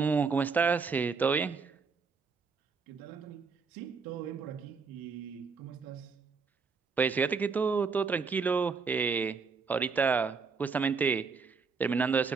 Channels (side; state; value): left; quieter; 5.1 dB